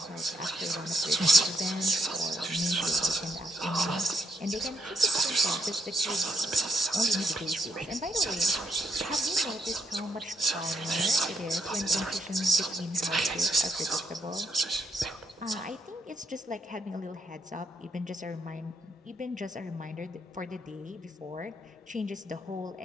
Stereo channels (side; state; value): both; normal; correlation 0.72